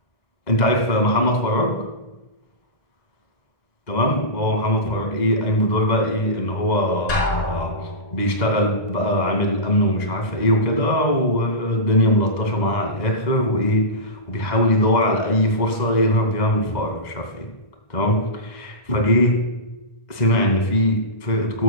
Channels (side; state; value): right; late; 2.0 ms